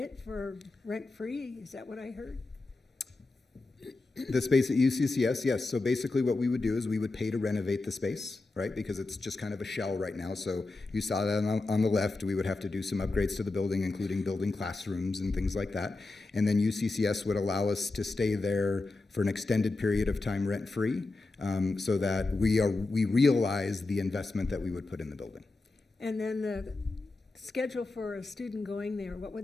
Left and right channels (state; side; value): quieter; right; 3.3 dB